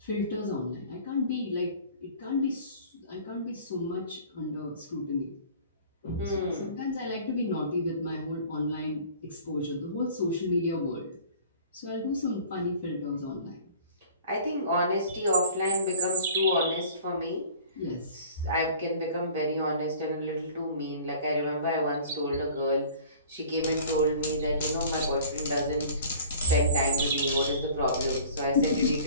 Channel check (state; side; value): inverted; both; correlation -0.47